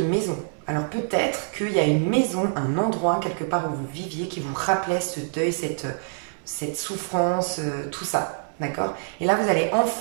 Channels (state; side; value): silent; left; digital silence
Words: Alors peut-être qu'il y a une maison, un endroit quelque part où vous viviez qui vous rappelait ce deuil, cette souffrance, tout ça. D'accord? Et là, vous allez